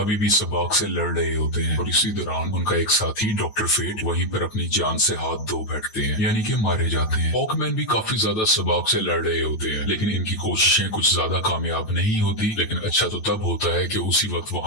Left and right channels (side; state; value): right; late; 9.1 ms